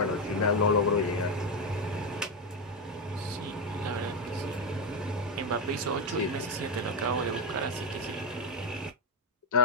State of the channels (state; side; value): normal; both; correlation 0.09